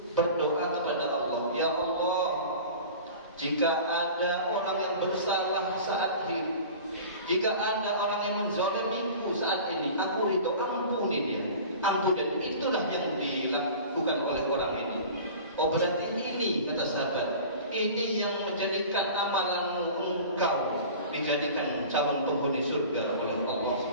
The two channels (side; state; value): both; inverted; correlation -0.39